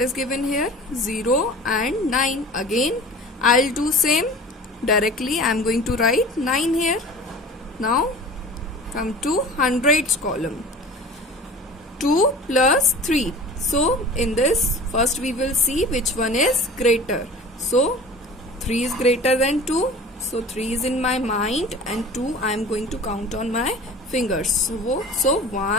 is given here? 0 and 9. Again I'll do same. Directly I am going to write 9 here. Now come to hundreds column. 2 plus 3. So in this first we will see which one is greater. So 3 is greater than 2. So 3 is in my mind and 2 I am going to count on my fingers. So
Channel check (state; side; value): normal; both; correlation 0.40